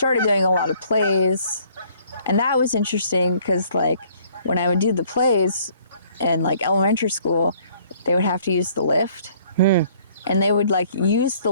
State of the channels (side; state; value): both; inverted; correlation -0.60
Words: doing a lot of plays. And that was interesting because like when I would do the plays in like elementary school, they would have to use the lift. And they would like use the